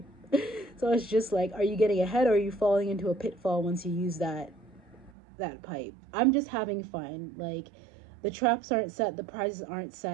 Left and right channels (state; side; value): drops out; left; at 5.1 s